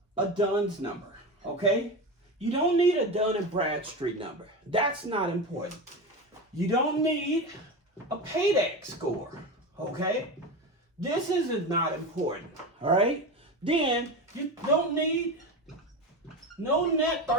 a DUNS number, okay? You don't need a Dun and Bradstreet number. That's not important. You don't need a paydex score, okay? This is not important, all right? Then you don't need no net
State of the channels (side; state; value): both; normal; correlation 0.22